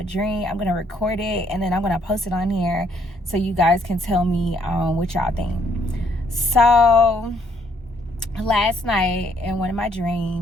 dream I'm gonna record it and then I'm gonna post it on here so you guys can tell me what y'all think. So last night in one of my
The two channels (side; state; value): both; normal; correlation 0.68